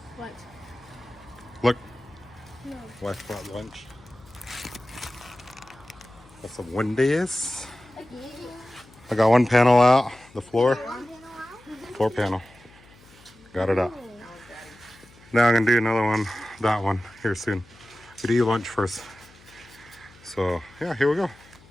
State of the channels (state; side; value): noise; left; hum, 26 dB below the sound